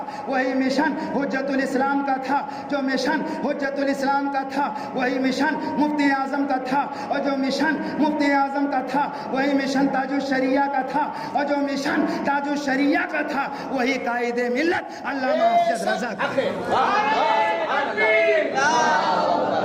وہی مشن حجت الاسلام کا تھا، جو مشن حجت الاسلام کا تھا وہی مشن مفتی اعظم کا تھا، اور جو مشن مفتی اعظم کا تھا وہی مشن تاج الشریعہ کا تھا، اور جو مشن تاج الشریعہ کا تھا وہی قائد ملت علامہ افضل رضا کا۔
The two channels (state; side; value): identical; both; correlation 1.00